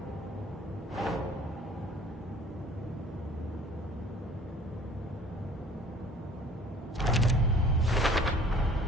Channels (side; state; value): both; normal; correlation 0.51